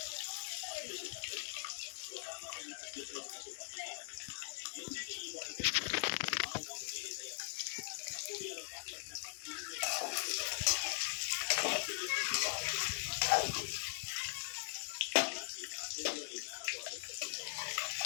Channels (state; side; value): silent; right; digital silence